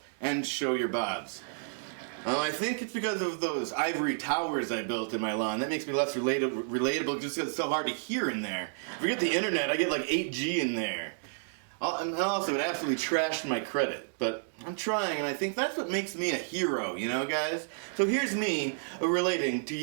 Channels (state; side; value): silent; left; digital silence